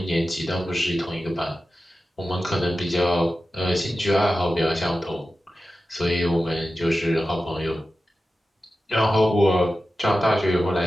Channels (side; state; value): both; normal; correlation 0.93